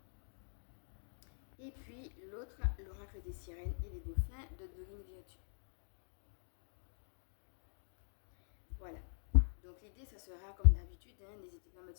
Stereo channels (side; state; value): right; silent; digital silence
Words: et puis l'autre, l'oracle des sirènes et des dauphins de Dorine Virtue. Voilà. Donc l'idée, ça sera comme d'habitude, n'hésitez pas à mettre